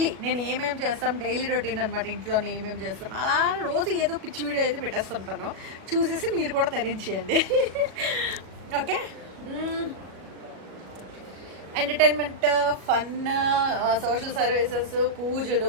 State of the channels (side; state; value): left; late; 37 ms